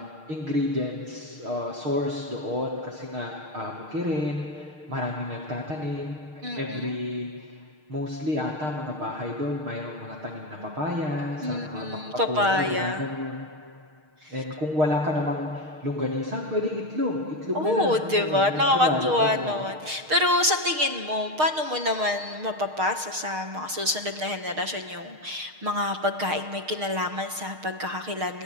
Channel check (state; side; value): late; left; 6.5 ms